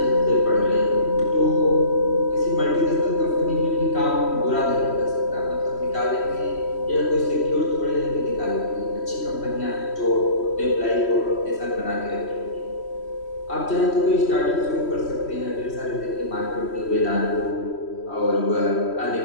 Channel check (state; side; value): late; right; 3.1 ms